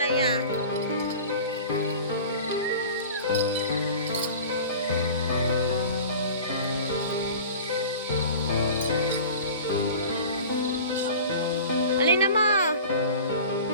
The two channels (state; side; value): inverted; both; correlation -0.39